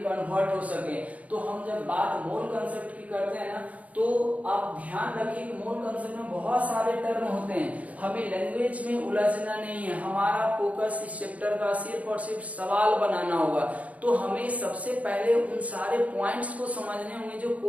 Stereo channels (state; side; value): late; left; 0.069 ms